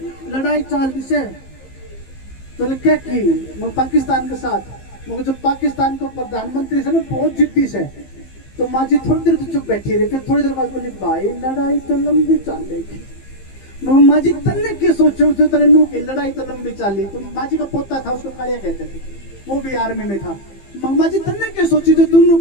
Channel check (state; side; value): late; right; 15 ms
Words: लड़ाई चाल से तो क्या की मैं पाकिस्तान के साथ। मगर जो पाकिस्तान को प्रधानमंत्री से ना बहुत जिद्दी से, तो माँ जी थोड़ी देर तो चुप बैठी रही। फिर थोड़ी देर बाद बोली भाई लड़ाई तो लंबी चलेगी। माँ जी तन्ने के सोचो तो तेरे नू की लड़ाई तो लंबी चली। तो माँ जी का पोता था, उसको कालिया कहते थे, वो भी आर्मी में था। माँ जी तन्ने के सोची जो तू